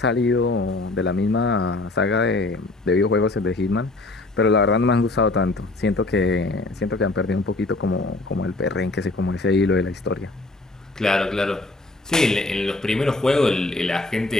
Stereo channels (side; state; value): right; quieter; 3.0 dB